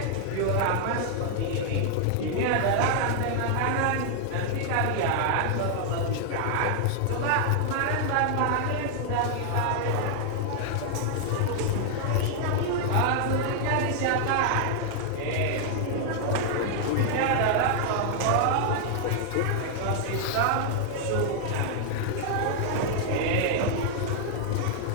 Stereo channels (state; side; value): different; both; correlation 0.00